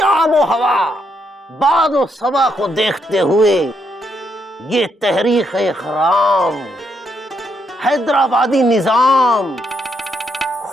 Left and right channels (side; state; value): both; normal; correlation 0.77